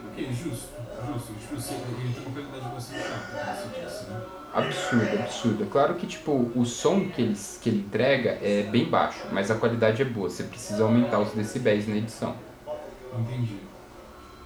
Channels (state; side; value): identical; both; correlation 1.00